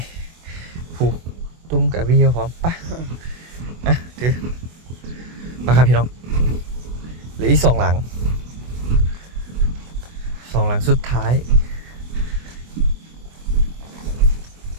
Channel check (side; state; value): left; late; 24 ms